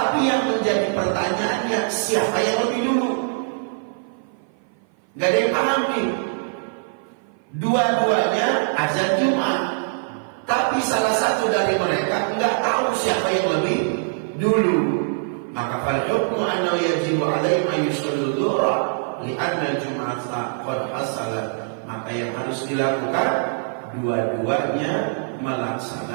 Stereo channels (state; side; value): silent; left; 56 dB below the other